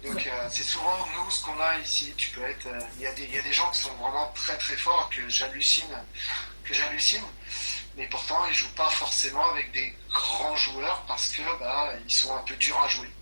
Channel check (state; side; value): inverted; both; correlation -1.00